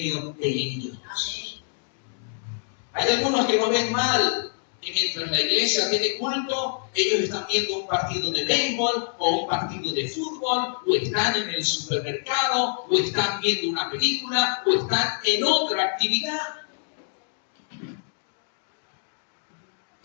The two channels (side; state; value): right; silent; digital silence